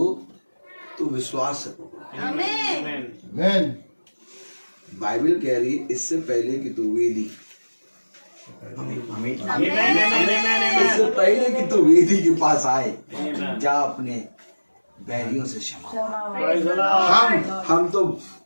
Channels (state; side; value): inverted; both; correlation -1.00